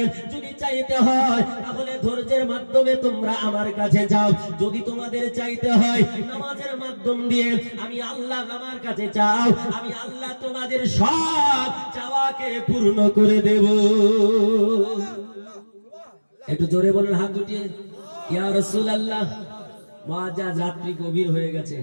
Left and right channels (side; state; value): both; inverted; correlation -1.00